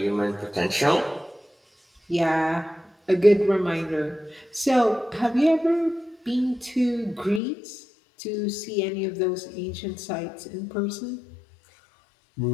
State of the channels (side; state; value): right; drops out; at 7.4 s